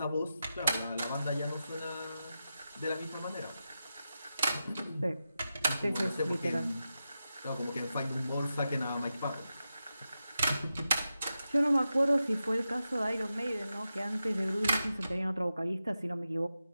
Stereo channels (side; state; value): both; inverted; correlation -0.90